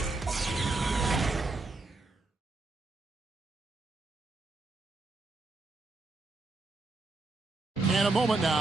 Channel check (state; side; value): quieter; left; 3.3 dB